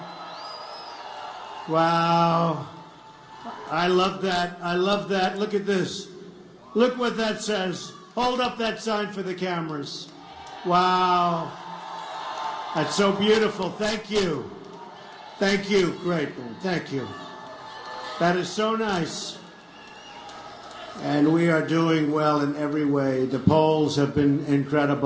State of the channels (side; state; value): both; identical; correlation 1.00